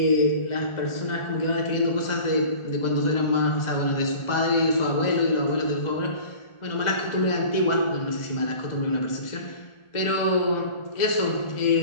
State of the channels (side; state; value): right; late; 1.4 ms